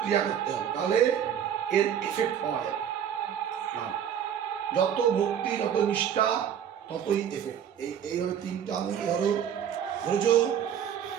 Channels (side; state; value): left; quieter; 9.0 dB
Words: ক্রিয়া করতে হবে, তাহলে এর এফেক্ট পাওয়া যাবে। যত ভক্তি যত নিষ্ঠা ততই এফেক্ট। এইভাবে তিনটা আঙুল ধরো, ধরেছো,